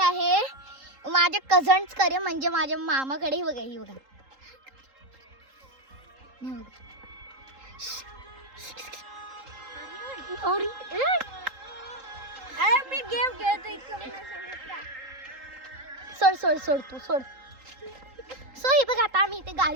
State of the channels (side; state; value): left; late; 3.8 ms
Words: माझ्या कझन्सकडे, म्हणजे माझ्या मामाकडे. बघा ही बघा, मी गेम खेळतो. सोड सोड सोड तू सोड. सो हे बघा, आता आम्ही इथे